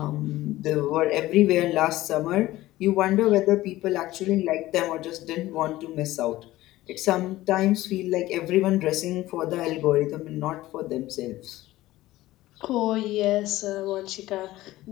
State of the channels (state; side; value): quieter; right; 16.6 dB